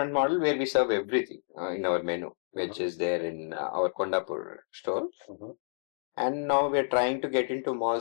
model where we serve everything in our menu, which is there in our Kondapur store. And now we're trying to get into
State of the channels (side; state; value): right; silent; digital silence